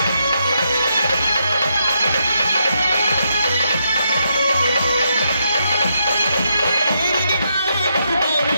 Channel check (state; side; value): inverted; both; correlation -0.80